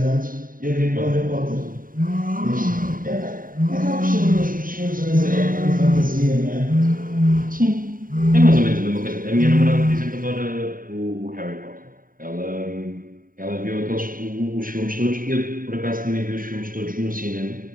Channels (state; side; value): late; left; 0.41 ms